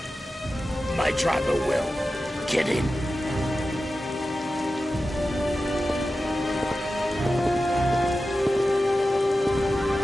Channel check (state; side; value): normal; both; correlation 0.93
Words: My driver will. Get in.